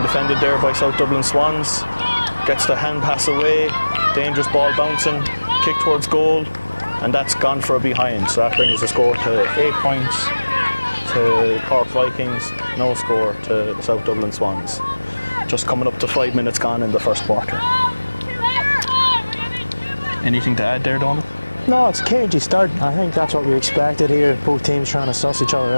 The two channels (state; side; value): inverted; both; correlation -1.00